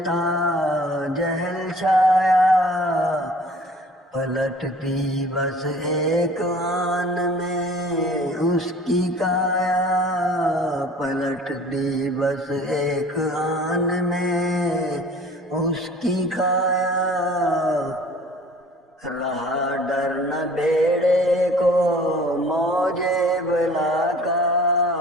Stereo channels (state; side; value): normal; both; correlation 0.49